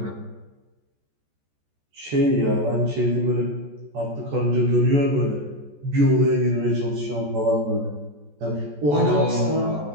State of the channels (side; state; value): left; late; 14 ms